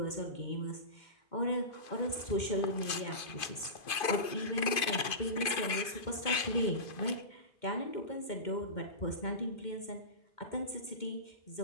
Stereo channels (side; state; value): right; late; 2.5 ms